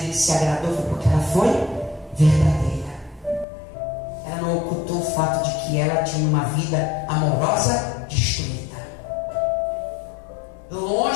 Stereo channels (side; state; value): right; drops out; at 3.5 s